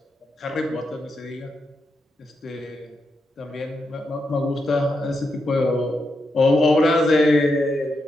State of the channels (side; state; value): both; normal; correlation 0.84